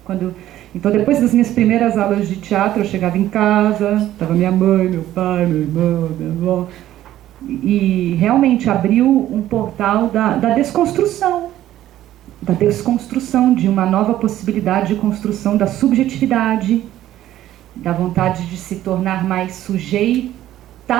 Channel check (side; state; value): left; quieter; 13.3 dB